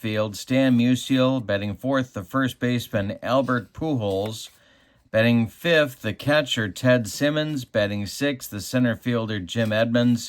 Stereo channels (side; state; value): both; identical; correlation 1.00